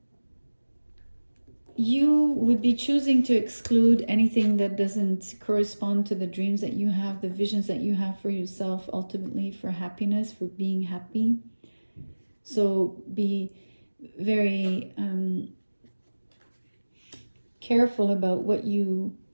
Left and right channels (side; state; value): both; inverted; correlation -1.00